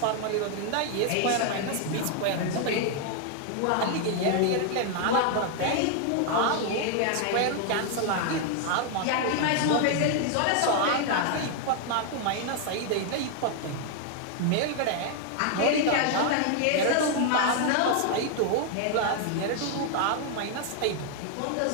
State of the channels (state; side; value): different; both; correlation 0.00